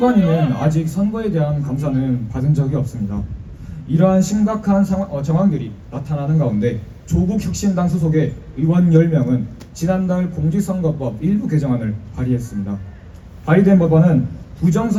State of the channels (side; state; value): both; identical; correlation 1.00